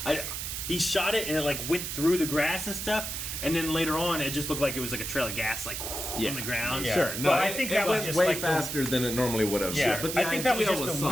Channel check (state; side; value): noise; right; hiss, 5 dB below the sound